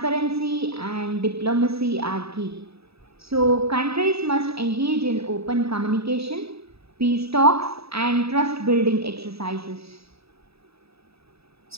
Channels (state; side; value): late; left; 0.78 ms